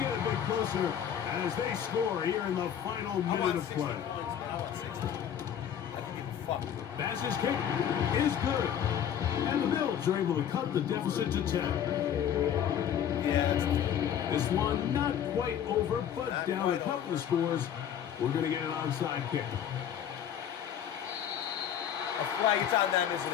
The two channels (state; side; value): quieter; right; 9.3 dB